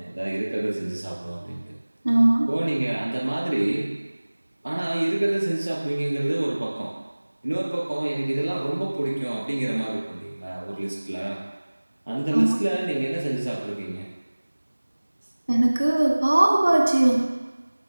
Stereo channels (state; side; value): inverted; both; correlation -1.00